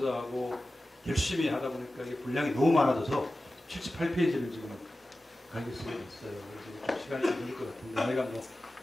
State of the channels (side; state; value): both; normal; correlation 0.95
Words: 열심히 하다 보니까 이게 분량이 너무 많아져서 78페이지를 지금 가게 쓰게 됐어요. 그래서 좀 시간이 좀 걸릴 것 같은데 내가 뭐